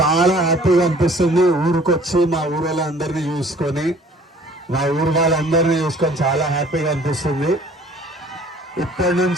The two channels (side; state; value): both; normal; correlation 0.53